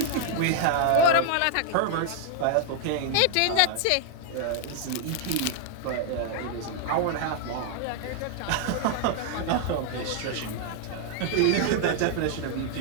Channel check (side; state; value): both; different; correlation 0.00